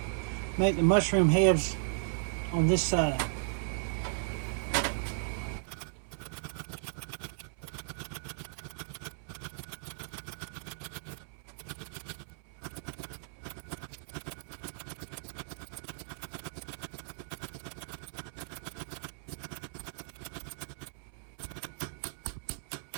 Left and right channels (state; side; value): silent; left; 54 dB below the other